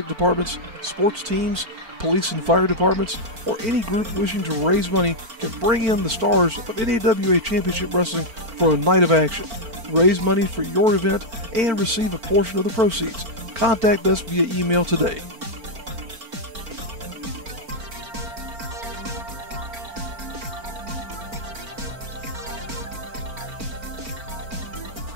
departments, sports teams, police and fire departments, or any group wishing to raise money can bring in the stars of NAWA Championship Wrestling for a night of action. Raise money for your event and receive a portion of the proceeds. Contact us via email today.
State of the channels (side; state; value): left; late; 4.4 ms